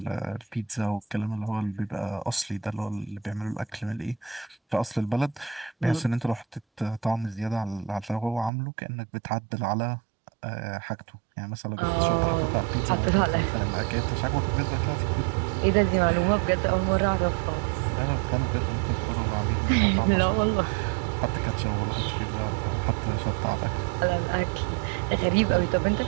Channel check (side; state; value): left; drops out; at 8.5 s